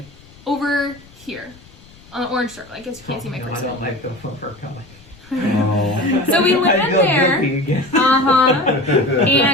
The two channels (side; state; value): left; noise; rumble, 24 dB below the sound